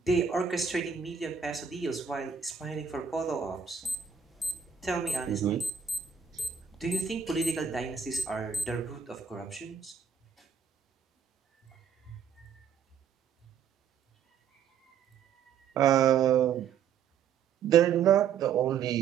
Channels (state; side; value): quieter; left; 7.3 dB